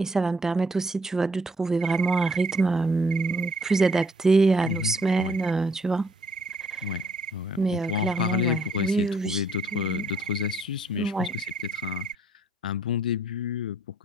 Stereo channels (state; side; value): normal; both; correlation 0.64